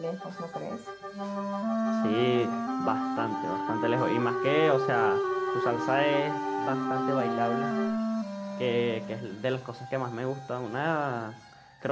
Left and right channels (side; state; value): both; identical; correlation 1.00